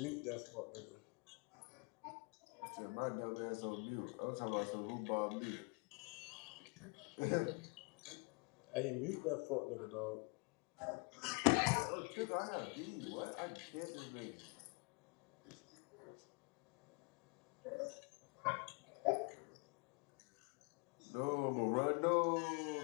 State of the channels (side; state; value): right; quieter; 32.7 dB